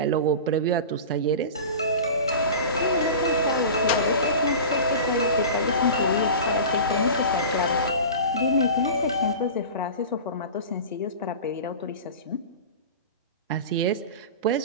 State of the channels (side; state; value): both; inverted; correlation -0.33